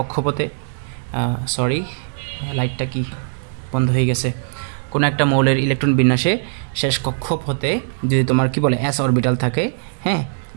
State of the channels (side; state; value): left; silent; digital silence